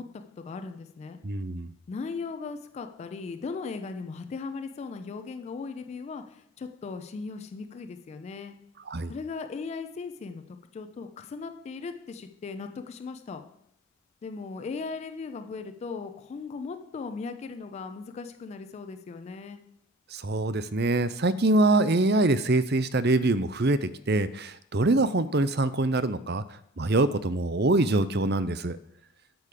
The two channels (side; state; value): both; normal; correlation 0.45